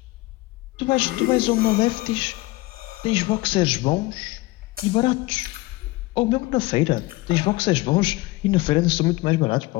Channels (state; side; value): quieter; right; 20.8 dB